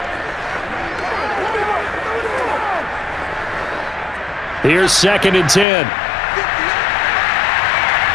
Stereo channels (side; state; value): right; drops out; at 5.7 s